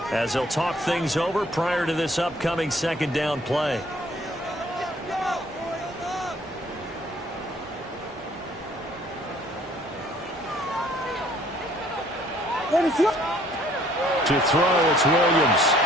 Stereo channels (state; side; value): normal; both; correlation 0.60